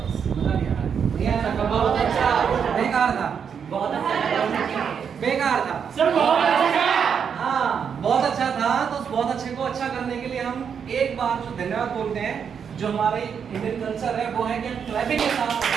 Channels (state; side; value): quieter; left; 7.2 dB